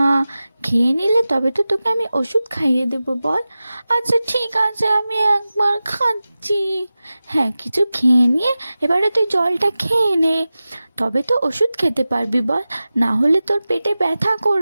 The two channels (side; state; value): both; inverted; correlation -0.95